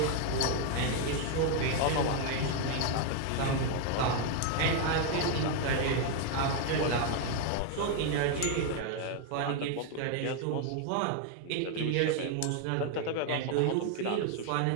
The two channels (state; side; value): different; both; correlation 0.01